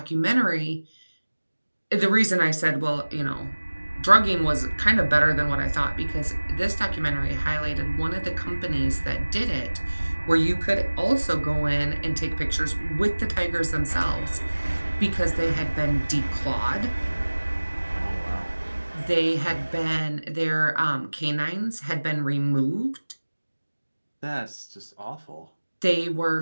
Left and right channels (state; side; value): inverted; both; correlation -1.00